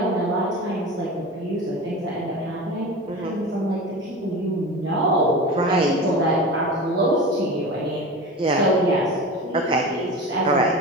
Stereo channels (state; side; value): normal; both; correlation 0.30